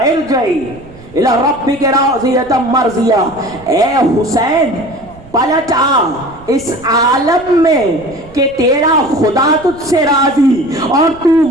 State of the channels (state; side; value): noise; right; rumble, 22 dB below the sound